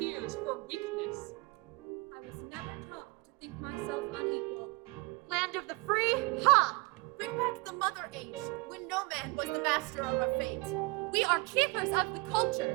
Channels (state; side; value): quieter; left; 26.3 dB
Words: for weakness. I was never taught to think myself unequal. Land of the free? Ha! Bring back the mother age, when no man was the master of our fate. We are keepers of the